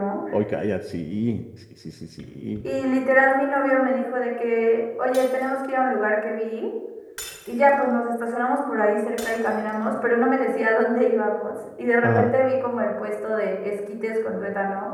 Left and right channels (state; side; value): identical; both; correlation 1.00